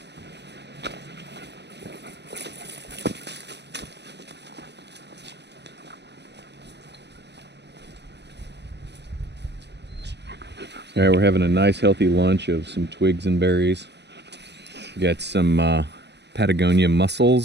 All right, we're having a nice healthy lunch of some twigs and berries. We got some Patagonia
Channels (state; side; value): late; left; 0.50 ms